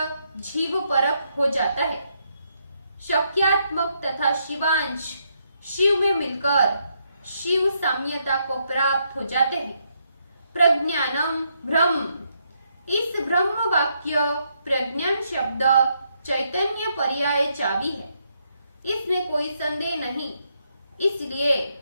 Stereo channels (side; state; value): both; inverted; correlation -0.77